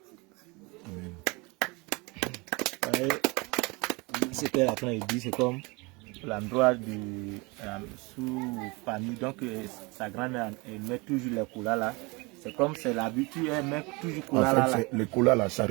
Amen. C'était la fin, il dit, c'est comme l'endroit sous-famille. Donc, sa grand-mère, elle met toujours les couleurs là. C'est comme c'est l'habitude, elle met toujours couleurs là. Les colas là, ça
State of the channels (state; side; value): quieter; left; 26.6 dB